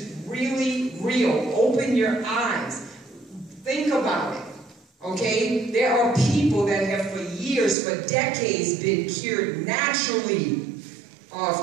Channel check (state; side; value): drops out; left; at 7.8 s